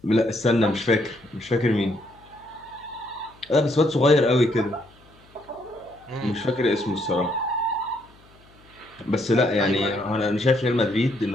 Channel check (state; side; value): noise; left; hum, 28 dB below the sound